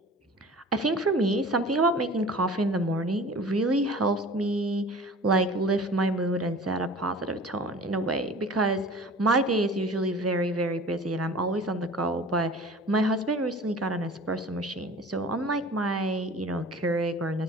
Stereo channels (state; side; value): normal; both; correlation 0.42